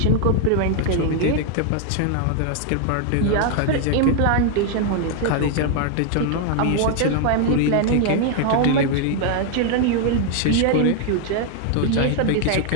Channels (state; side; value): different; both; correlation 0.00